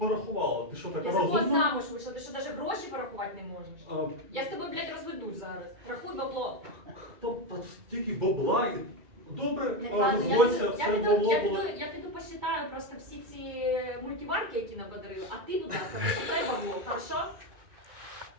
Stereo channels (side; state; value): left; late; 2.3 ms